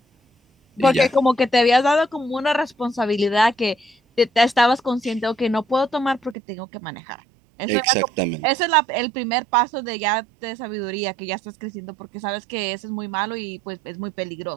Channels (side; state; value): left; drops out; at 6.4 s